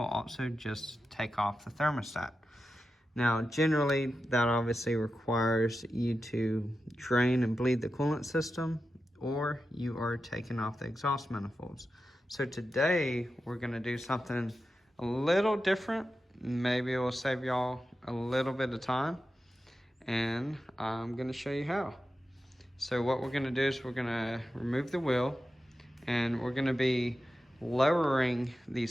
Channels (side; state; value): both; normal; correlation 0.91